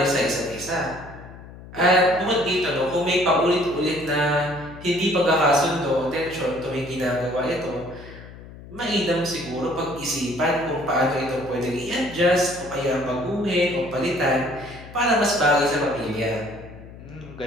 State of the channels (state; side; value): noise; left; hum, 17 dB below the sound